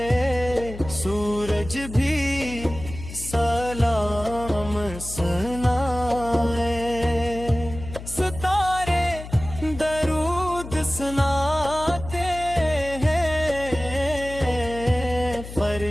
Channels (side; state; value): left; noise; hum, 12 dB below the sound